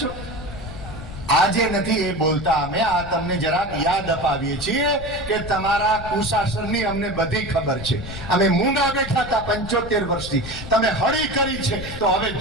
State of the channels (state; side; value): noise; left; rumble, 11 dB below the sound